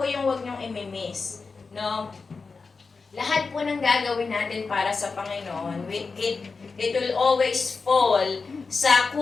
yung huwag niyong imimiss. No? Lahat po ng gagawin natin para sa Panginoon, it will always fall sa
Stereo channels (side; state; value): right; quieter; 4.5 dB